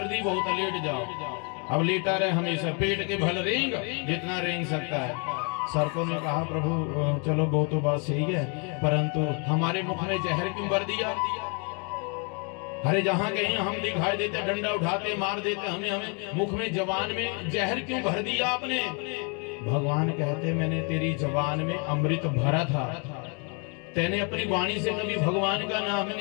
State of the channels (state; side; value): quieter; right; 35.7 dB